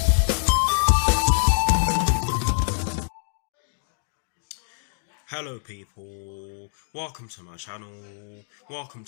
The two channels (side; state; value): right; silent; digital silence